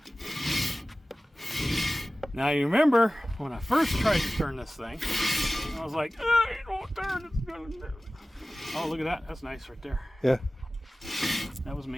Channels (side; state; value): both; normal; correlation 0.97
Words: Now you remember when I first tried to turn this thing, I was like, oh, it won't turn. It's gonna do. Oh, look at that. That's nice right there. Yeah. That was